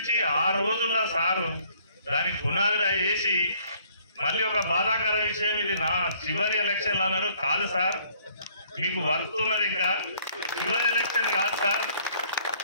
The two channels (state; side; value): inverted; both; correlation -0.61